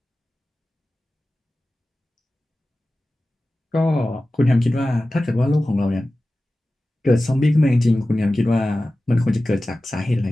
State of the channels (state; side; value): normal; both; correlation 0.95